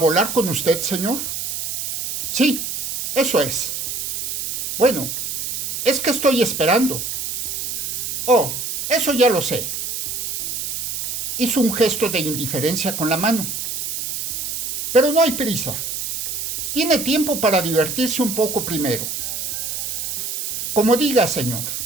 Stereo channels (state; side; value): noise; right; hiss, 4 dB below the sound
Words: con usted, señor? Sí, eso es. Bueno, es que estoy esperando. Oh, eso ya lo sé. Hizo un gesto de indiferencia con la mano. Pero no hay prisa. Tiene tiempo para divertirse un poco primero. Como diga, señor.